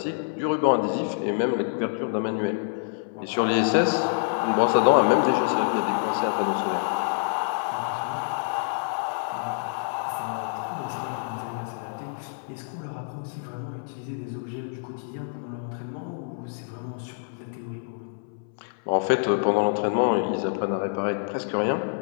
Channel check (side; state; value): right; silent; 60 dB below the other